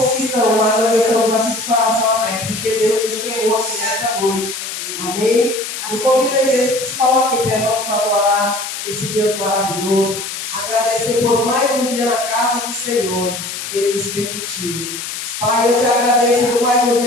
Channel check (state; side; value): noise; left; hiss, 7 dB below the sound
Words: que estão, mas nós estamos aqui de coração aberto, porque Deus nos chamou aqui nesta noite. Amém? Eu convido a igreja que se coloque em pé, vamos adorar esse Deus maravilhoso, agradecer por mais um dia na casa do Senhor, que Ele nos permitiu. Pai, eu te agradeço por mais um